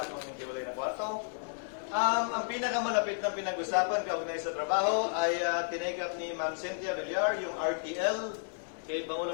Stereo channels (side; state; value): right; silent; digital silence